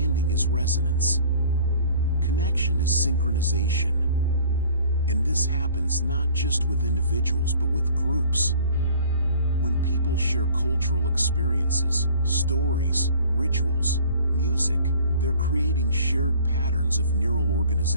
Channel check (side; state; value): both; inverted; correlation -0.51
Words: is resonance. Connection is synchronization. And this happens not just with individuals but with groups. When people share cultural experiences, stories, rituals, music, they're creating shared patterns of neural